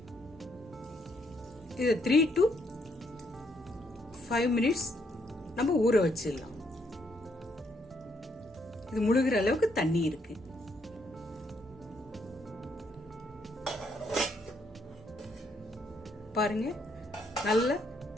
இது 3 to 5 minutes நம்ம ஊற வச்சிடலாம். இது முழுகிற அளவுக்கு தண்ணி இருக்கு. பாருங்க, நல்ல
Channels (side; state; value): both; normal; correlation 0.73